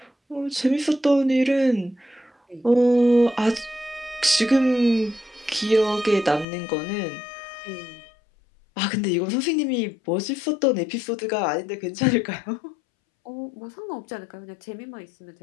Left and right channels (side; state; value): right; drops out; at 6.5 s